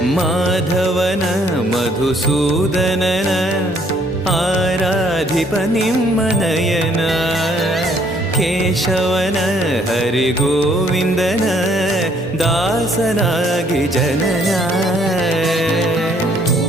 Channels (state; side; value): normal; both; correlation 0.64